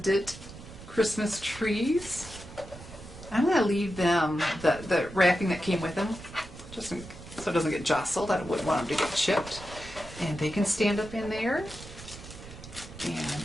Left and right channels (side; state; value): right; noise; rumble, 15 dB below the sound